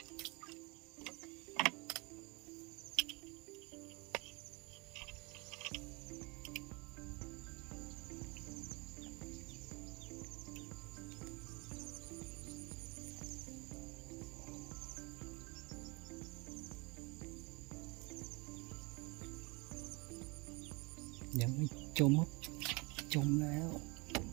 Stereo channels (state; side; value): quieter; left; 27.8 dB